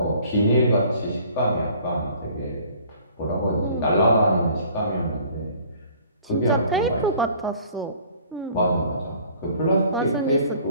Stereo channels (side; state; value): both; inverted; correlation -0.53